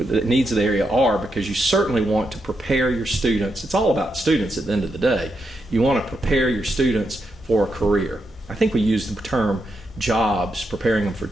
are, because you certainly want to prepare your students. It's all about students at the end of the day. You want to prepare your students for a career. I think we use the term jobs, preparing them for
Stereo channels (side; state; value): both; normal; correlation 0.83